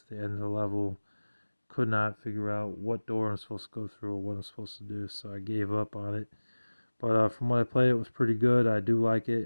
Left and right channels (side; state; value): both; inverted; correlation -1.00